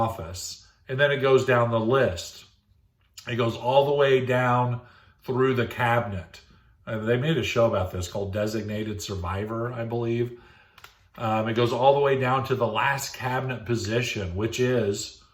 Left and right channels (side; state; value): both; identical; correlation 1.00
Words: And then it goes down the list. It goes all the way down through the cabinet. They made a show about this called Designated Survivor, I believe. It goes all the way down to the last cabinet position, which is